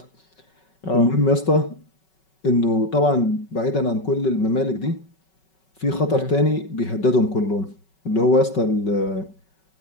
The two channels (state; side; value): late; right; 5.3 ms